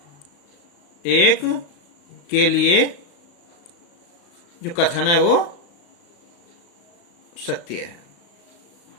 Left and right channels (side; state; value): right; late; 35 ms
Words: 1 के लिए जो कथन है वो सत्य है।